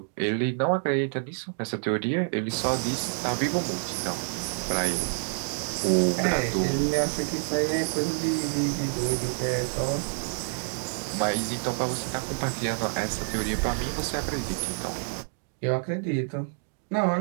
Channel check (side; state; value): left; silent; 56 dB below the other